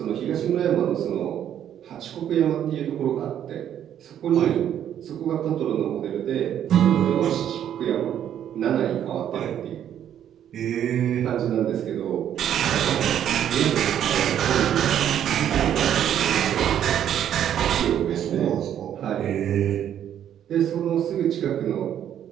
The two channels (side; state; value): left; quieter; 10.1 dB